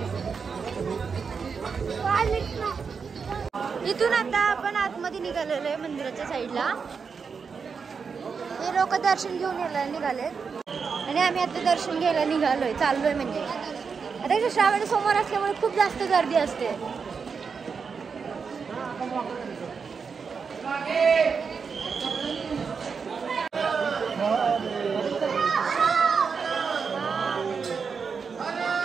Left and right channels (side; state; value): left; quieter; 5.7 dB